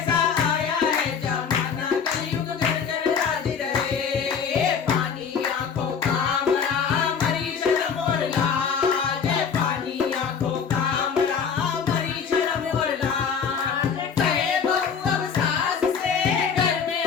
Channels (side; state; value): right; quieter; 6.5 dB